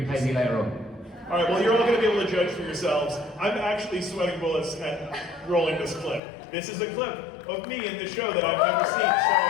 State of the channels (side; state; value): right; drops out; at 6.2 s